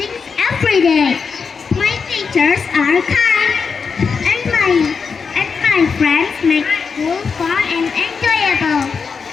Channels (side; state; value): right; quieter; 5.5 dB